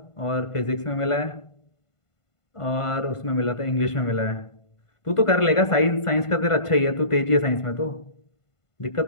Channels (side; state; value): right; late; 1.5 ms